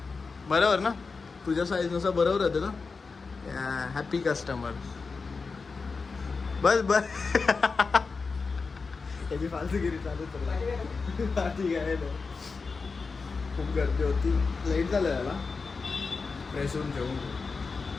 बरोबर ना, तुझ्या साईज नुसार बरोबर होते ना. Happy customer. बस त्याची फालतूगिरी चालू तर ठीक आहे. खूप गर्दी होती, लेट झालं याला. फ्रेश होऊन जेवून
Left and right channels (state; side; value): quieter; right; 4.5 dB